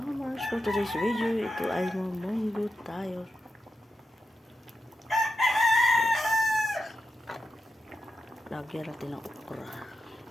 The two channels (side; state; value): both; normal; correlation 0.87